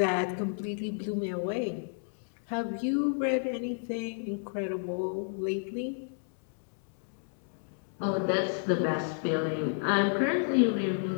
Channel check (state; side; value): silent; right; digital silence